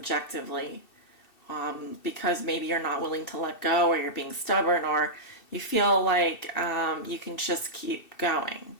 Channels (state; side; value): late; right; 2.7 ms